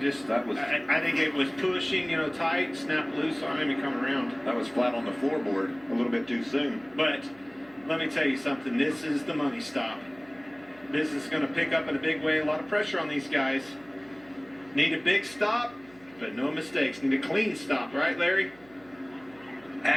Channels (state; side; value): noise; right; hum, 27 dB below the sound